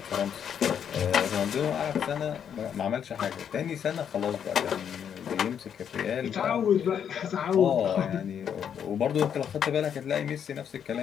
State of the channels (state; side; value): quieter; right; 8.3 dB